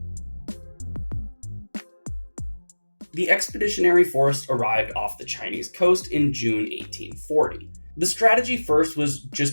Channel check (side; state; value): both; inverted; correlation -1.00